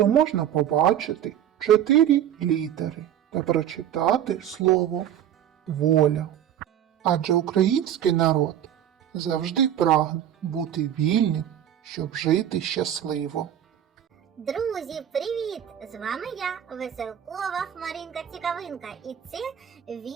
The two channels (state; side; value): quieter; left; 10.5 dB